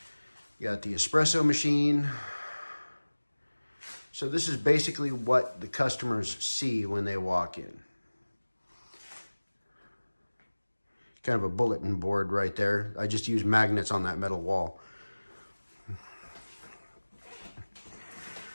You got the espresso machine. So this is basically what the customers see when they walk in. Kind of a bulletin board right there. I just use magnets on that metal wall.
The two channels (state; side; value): inverted; both; correlation -1.00